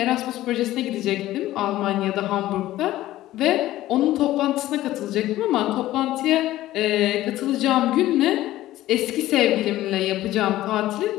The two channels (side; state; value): right; quieter; 15.2 dB